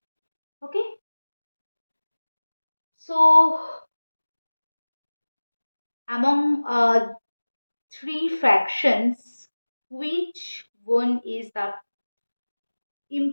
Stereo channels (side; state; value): both; inverted; correlation -1.00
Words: Okay. So among three fractions, which one is the